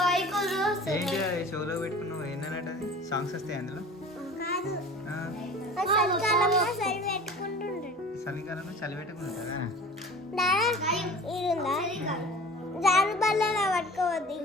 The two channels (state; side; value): normal; both; correlation 0.40